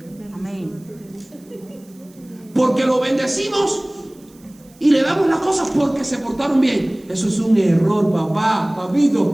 Amén. Porque lo bendecimos y le damos las cosas porque se portaron bien. Eso es un error, papá,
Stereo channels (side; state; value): right; noise; hiss, 29 dB below the sound